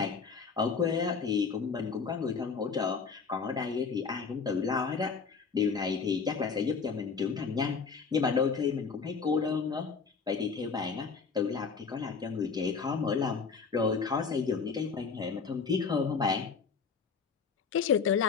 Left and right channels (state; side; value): quieter; right; 5.4 dB